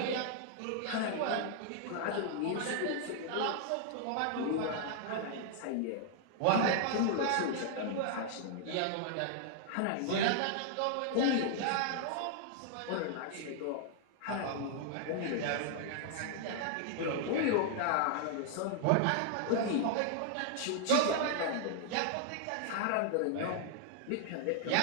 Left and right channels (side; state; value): both; different; correlation 0.00